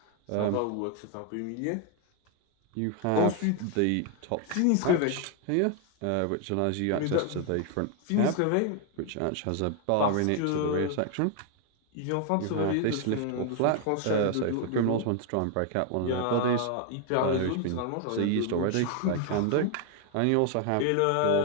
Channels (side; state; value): both; different; correlation 0.00